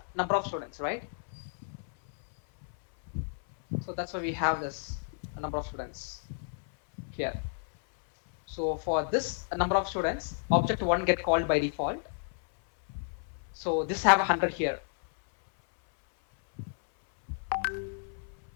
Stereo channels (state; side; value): silent; right; 57 dB below the other